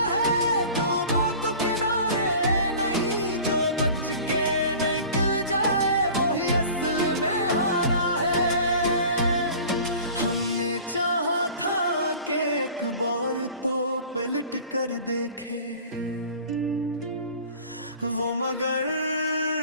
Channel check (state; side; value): inverted; both; correlation -0.43